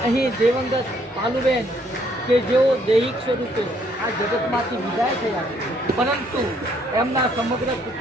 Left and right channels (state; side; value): normal; both; correlation 0.67